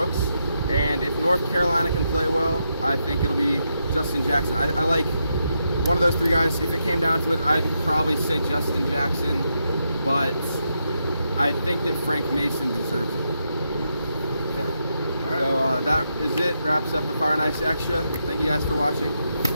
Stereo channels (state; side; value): inverted; both; correlation -0.83